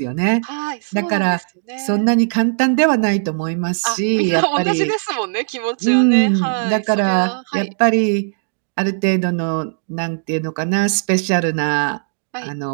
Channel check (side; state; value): left; silent; digital silence